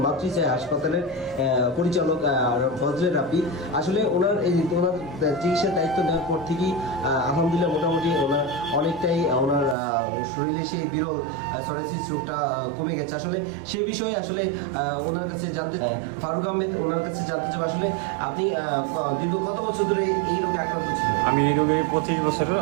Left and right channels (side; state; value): left; drops out; at 9.8 s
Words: মাতৃসায় হাসপাতালের পরিচালক ফজলে রাব্বি। আসলে ওনার চিকিৎসার দায়িত্ব নেওয়ার পর থেকেই আলহামদুলিল্লাহ মোটামুটি ওনার অনেকটাই ওনার শরীরে সেই বিরল সরেসিস রোগটা কমে গেছে। আসলে সেই বিষয়ে আসলে ওনার কাছে জানতে ফারুক আহমেদ ওনার কাছে জানতে চাই, আসলে আপনি দীর্ঘ কত বছর ধরে এই রোগে আক্রান্ত ছিলেন? আমি এই রোগে 25 বছরের